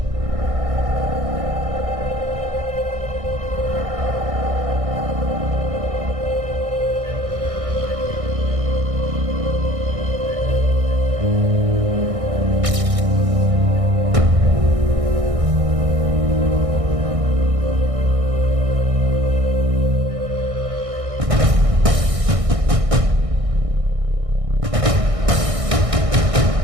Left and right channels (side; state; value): left; late; 1.6 ms